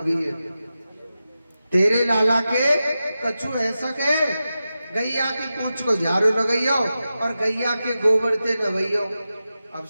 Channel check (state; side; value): inverted; both; correlation -0.92